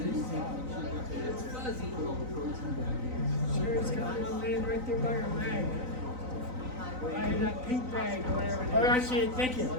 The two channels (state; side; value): late; left; 3.9 ms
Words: It's fuzzy. Sure, it's got one laying right there by your bag. I have that pink bag or whatever. Oh, I see it. Thank you.